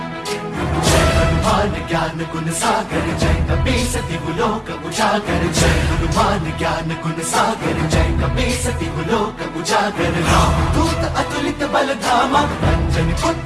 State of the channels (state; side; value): identical; both; correlation 1.00